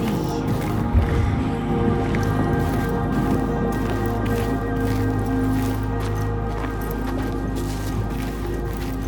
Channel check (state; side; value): identical; both; correlation 1.00